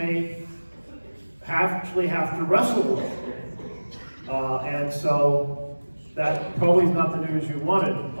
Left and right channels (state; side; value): inverted; both; correlation -1.00